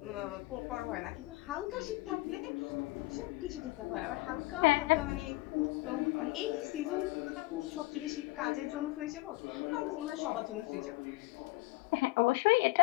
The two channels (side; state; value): right; quieter; 21.1 dB